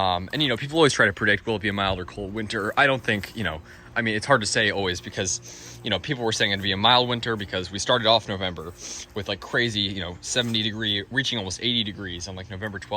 always try to predict, will it be a mild or cold winter? I don't think, it's hard to say always because, people were saying it'd be a mild winter because we started off November with like crazy, 70 degree, reaching almost 80 degrees on like November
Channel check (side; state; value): both; identical; correlation 1.00